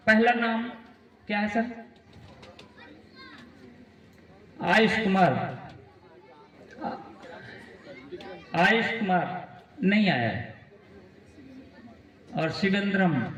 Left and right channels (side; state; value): both; identical; correlation 1.00